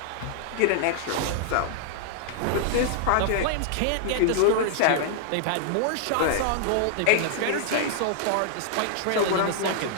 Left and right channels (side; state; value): both; different; correlation -0.01